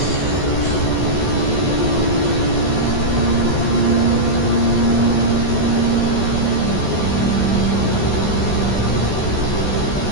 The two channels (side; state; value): right; late; 14 ms